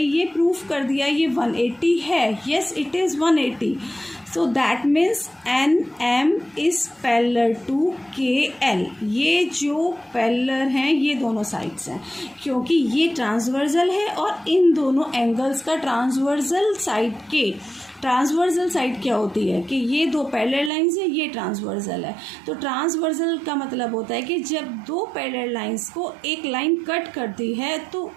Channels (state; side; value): drops out; left; at 20.7 s